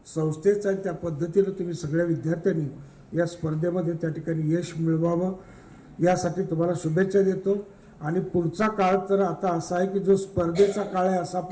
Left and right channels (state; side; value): identical; both; correlation 1.00